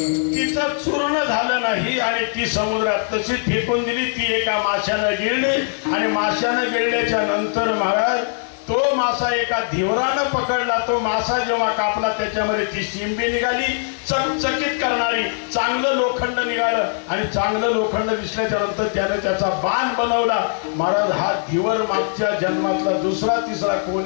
तिचं चूर्ण झालं नाही आणि ती समुद्रात तशीच फेकून दिली. ती एका माशानं गिळली आणि माशानं गिळल्याच्या नंतर महाराज तो मासा एका धिवरानं पकडला. तो मासा जेव्हा कापला त्याच्यामध्ये ती शिंबी निघाली, चकचकीत करणारी. चांगलं लोखंड निघालं आणि चांगलं लोखंड दिसल्याच्या नंतर त्याने त्याचा बाण बनवला. महाराज, हा धिवर मागच्या जन्मातला दुसरा तिसरा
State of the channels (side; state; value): right; silent; digital silence